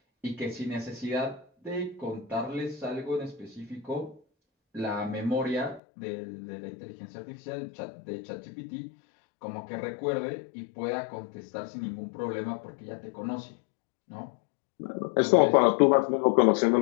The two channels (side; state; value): right; drops out; at 5.8 s